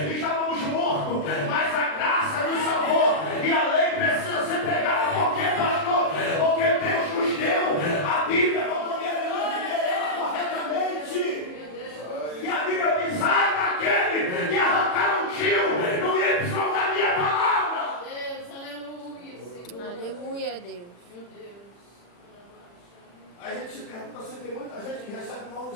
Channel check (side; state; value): right; late; 40 ms